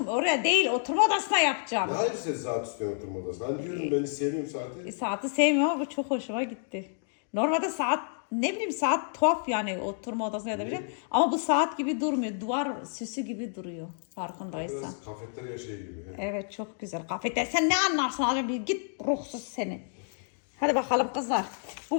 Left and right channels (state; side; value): silent; right; digital silence